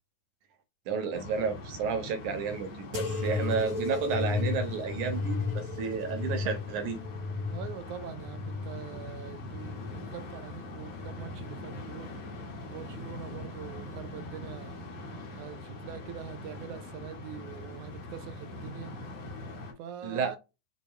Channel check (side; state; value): left; late; 9.4 ms